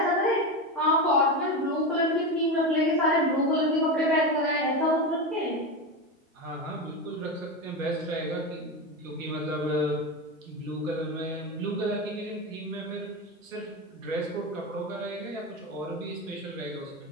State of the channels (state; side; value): normal; both; correlation 0.18